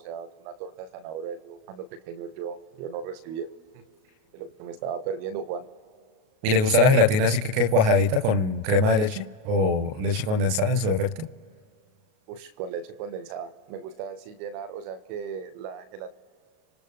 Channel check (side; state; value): left; late; 38 ms